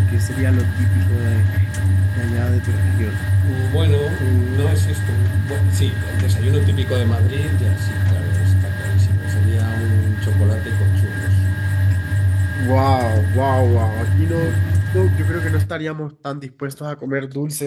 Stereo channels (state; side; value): identical; both; correlation 1.00